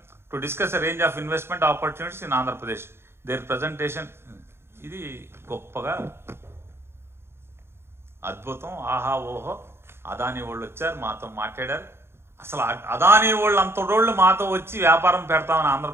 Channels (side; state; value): left; late; 0.12 ms